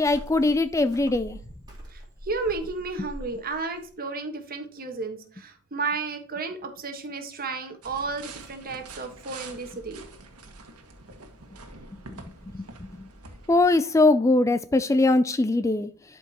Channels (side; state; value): both; normal; correlation 0.63